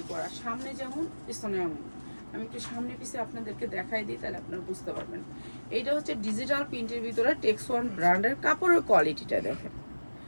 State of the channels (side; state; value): both; inverted; correlation -1.00